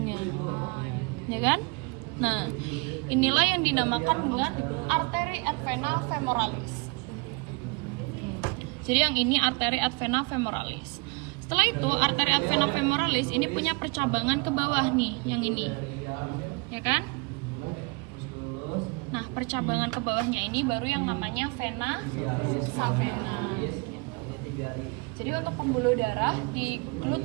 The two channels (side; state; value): left; quieter; 29.0 dB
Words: Ya kan? Nah, inilah yang dinamakan dengan arteri et vena femoralis. Jadi yang ini arteri et vena femoralis. Setelah itu, arteri et vena femoralis ini punya percabangan ke bawah nih, yang ini. Ya kan? Nah, percabangan ke bawahnya ini baru yang namanya vena savena. Jadi untuk pembuluh darah di